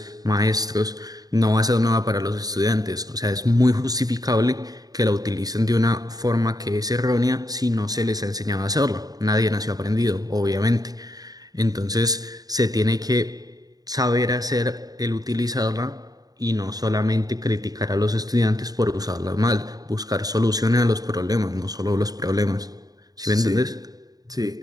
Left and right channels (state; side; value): late; left; 0.18 ms